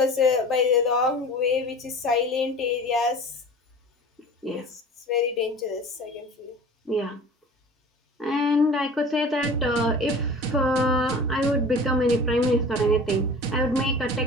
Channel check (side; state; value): both; normal; correlation 0.40